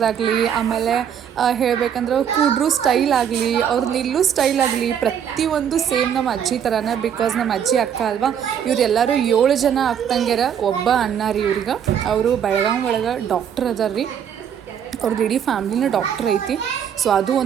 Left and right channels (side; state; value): left; quieter; 8.5 dB